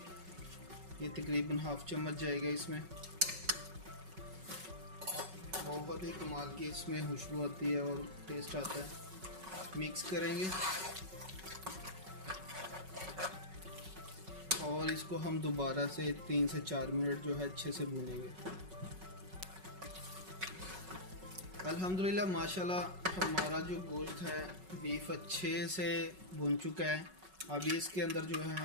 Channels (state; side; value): late; left; 5.4 ms